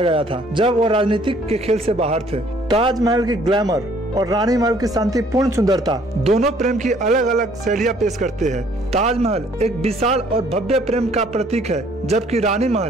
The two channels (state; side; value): normal; both; correlation 0.60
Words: गया था जब वो राजनीतिक के खेल से बाहर थे। ताजमहल की ग्लैमर और रानी महल की शांतिपूर्ण सुंदरता दोनों प्रेम की अलग अलग शैलियां पेश करते हैं। ताजमहल एक विशाल और भव्य प्रेम का प्रतीक है, जबकि रानी